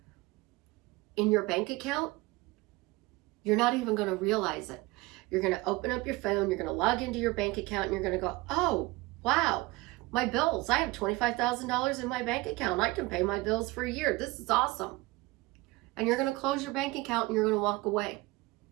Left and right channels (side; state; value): left; quieter; 21.7 dB